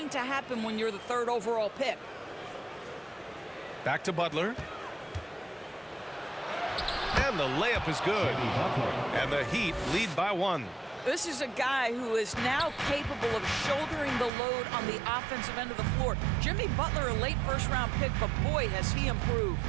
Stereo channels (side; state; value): left; drops out; at 14.3 s